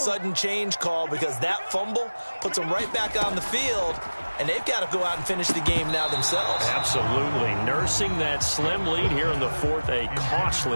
change call because that fumble puts them right back on the field, and they've got to go out and finish the game now themselves. Absolutely. Nursing that slim lead here in the 4th, a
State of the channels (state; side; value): inverted; both; correlation -1.00